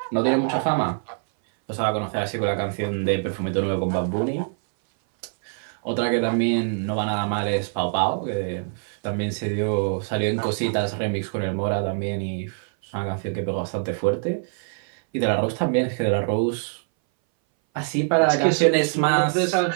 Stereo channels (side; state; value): left; silent; 60 dB below the other